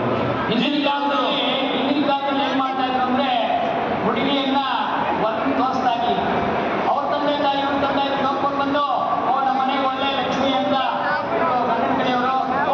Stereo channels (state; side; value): identical; both; correlation 1.00